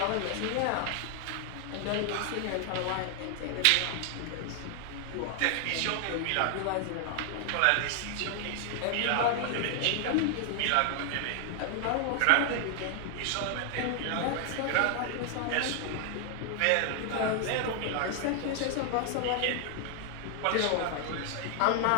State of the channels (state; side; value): different; both; correlation 0.00